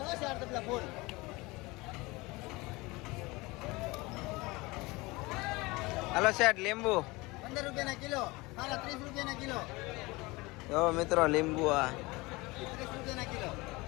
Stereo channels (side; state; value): right; quieter; 23.0 dB